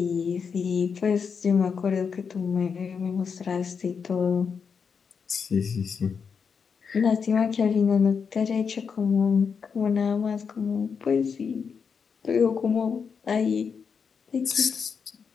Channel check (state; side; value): quieter; right; 6.1 dB